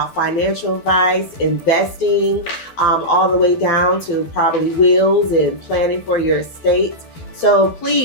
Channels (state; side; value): late; right; 12 ms